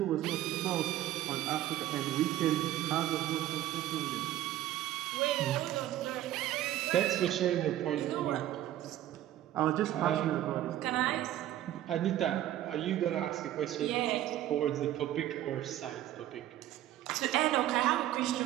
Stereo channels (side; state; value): left; quieter; 13.2 dB